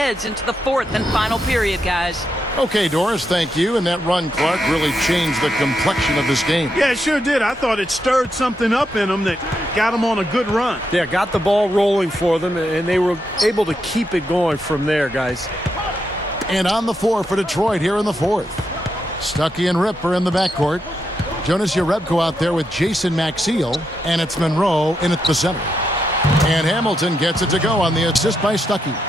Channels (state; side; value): normal; both; correlation 0.82